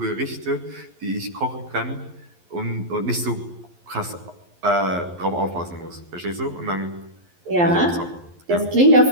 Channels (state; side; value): late; left; 11 ms